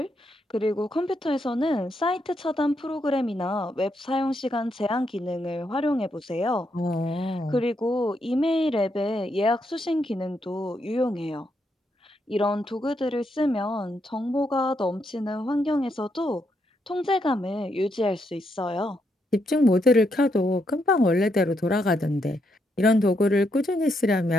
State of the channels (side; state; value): both; normal; correlation 0.79